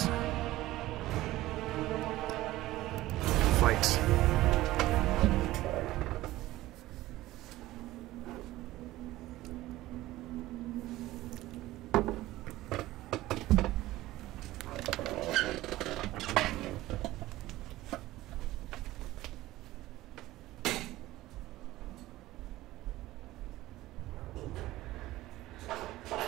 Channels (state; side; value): quieter; left; 16.7 dB